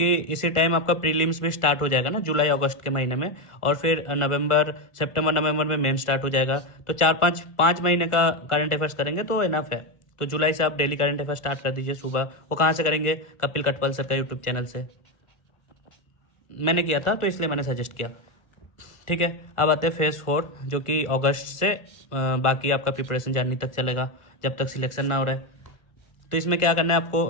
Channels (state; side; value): late; right; 1.4 ms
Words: इसी टाइम आपका प्रीलिम्स भी स्टार्ट हो जाएगा ना, जुलाई अगस्त के महीने में, और फिर सितंबर नवंबर में मेन स्टार्ट हो जाएगा। तो 4-5 महीने का करंट अफेयर्स करेंगे तो इनफ है। तो जुलाई से आप डेली करंट अफेयर्स स्टार्ट कर दीजिए सुबह। वो कहाँ से करेंगे, कपिल कटपल सर का यूट्यूब चैनल से, मैंने किया था तो इसलिए मैंने सजेस्ट किया, ठीक है। अब आते हैं फेज़ 4, जो कि अगस्त से बाकी आपका प्रिपरेशन जनवरी तक चलेगा, जब तक सिलेक्शन ना हो रहा है। तो इसमें क्या करना है,